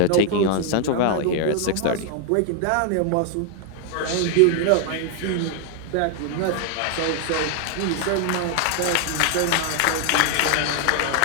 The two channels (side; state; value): both; different; correlation 0.00